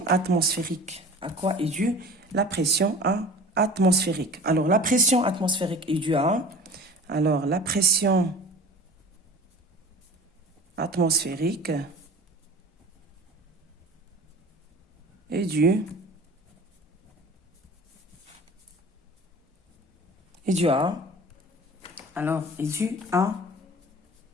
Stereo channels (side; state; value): both; normal; correlation 0.41